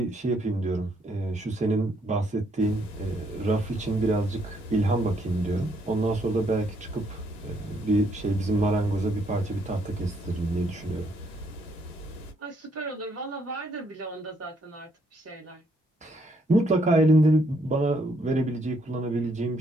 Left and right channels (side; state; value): both; normal; correlation 0.71